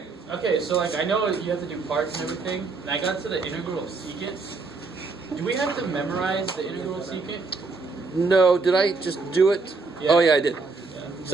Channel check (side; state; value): left; quieter; 4.1 dB